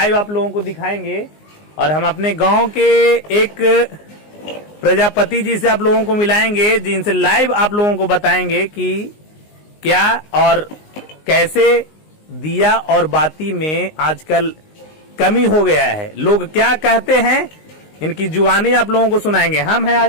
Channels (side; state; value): right; late; 19 ms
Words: आप लोगों को दिखाएंगे। और हम अपने गांव के एक प्रजापति जी से आप लोगों को मिलाएंगे जिनसे लाइव आप लोगों को बताएंगे कि क्या और कैसे दिया और बाती में आजकल कमी हो गया है, लोग क्या कहते हैं, इनकी जुबानी आप लोगों को सुनाएंगे। हम हैं